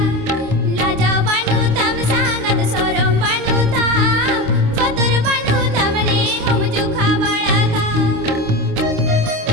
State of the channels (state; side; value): late; left; 26 ms